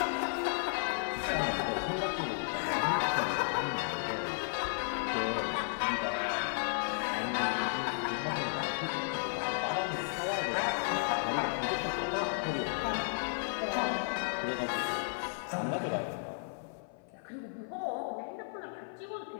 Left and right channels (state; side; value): silent; right; 55 dB below the other